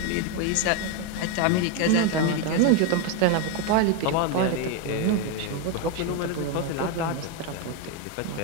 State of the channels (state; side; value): different; both; correlation 0.02